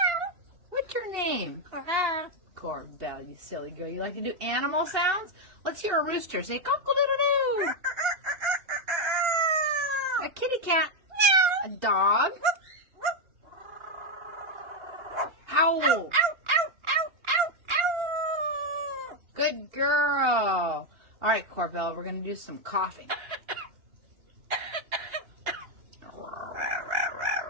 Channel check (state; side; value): late; left; 2.8 ms